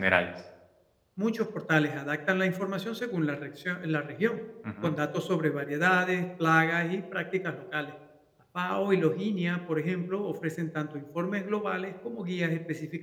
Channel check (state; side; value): identical; both; correlation 1.00